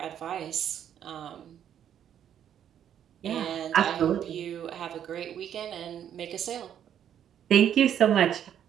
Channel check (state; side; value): quieter; left; 9.7 dB